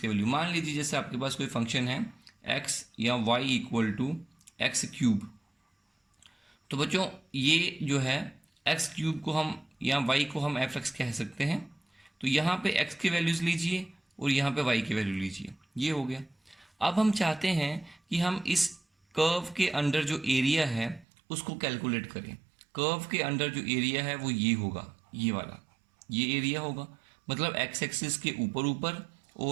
वैल्यू। मान लीजिए जैसे आपके पास कोई फंक्शन है एक्स या y equal to x cube. तो बच्चों ये जो है एक्स क्यूब को हम या वाई को हम एफ एक्स कह सकते हैं। तो यहाँ पे एक्स की वैल्यूज़ लीजिए और यहाँ पे वाई की वैल्यू लीजिए, ये हो गया। अब हम चाहते हैं कि हम इस कर्व के अंडर जो एरिया है उसको कैलकुलेट करें। कर्व के अंडर जो एरिया है वो ये होगा, ये वाला, ये एरिया होगा, मतलब एक्स एक्सिस के ऊपर ऊपर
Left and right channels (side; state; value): left; drops out; at 21.1 s